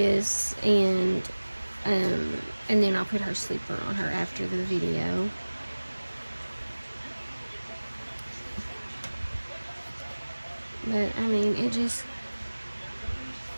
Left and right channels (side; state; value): both; inverted; correlation -1.00